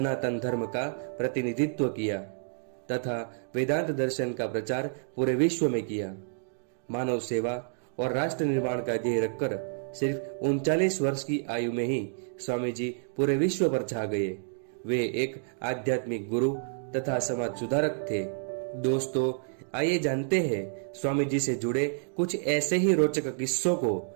धर्म का प्रतिनिधित्व किया तथा वेदांत दर्शन का प्रचार पूरे विश्व में किया। मानव सेवा और राष्ट्र निर्माण का ध्येय रखकर सिर्फ 39 वर्ष की आयु में ही स्वामी जी पूरे विश्व पर छा गए। वे एक आध्यात्मिक गुरु तथा समाज सुधारक थे। दोस्तों, आइए जानते हैं स्वामी जी से जुड़े कुछ ऐसे ही रोचक किस्सों को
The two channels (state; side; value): silent; left; digital silence